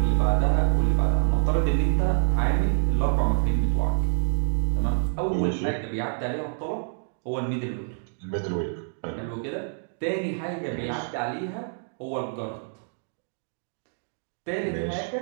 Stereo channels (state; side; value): silent; left; 61 dB below the other